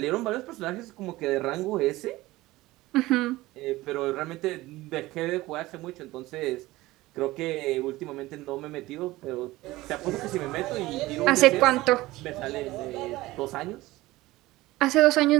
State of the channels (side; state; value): left; quieter; 18.5 dB